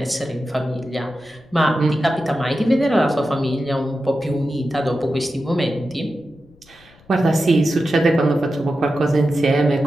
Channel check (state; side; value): noise; left; rumble, 28 dB below the sound